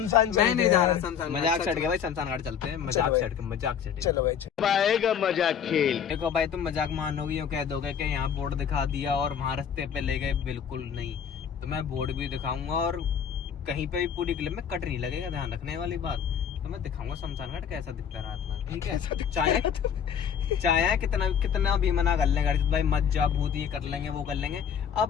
मैं नहीं जा रहा शमशान, मजाक छट गया भाई, शमशान घाट चलते हैं। मजाक छट चलो भाई, आएगा मजाक खेल। देखो भाई तुम मजाक मानोगे, यूँ कह दोगे कि यहाँ बोर्ड दिखा दिया और वहाँ रास्ते पे ले गए, बिल्कुल नहीं। तो मैं बोर्ड भी दिखाऊंगा, और कहीं पे भी पूरी क्लिप में कट नहीं लगेगा, ध्यान रखने वाली बात। तो मैं दिखाऊंगा शमशान घाट कैसा दिखता है रात में, ठीक है? चाहे कितना भी मना कर लेंगे भाई, मत जा भूत, ये कर लेंगे वो कर लेंगे।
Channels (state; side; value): quieter; right; 7.8 dB